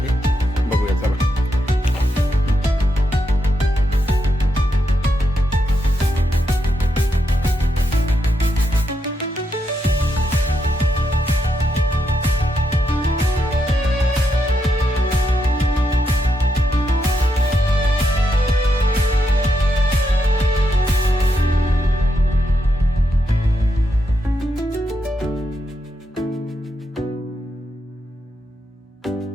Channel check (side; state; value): both; normal; correlation 0.82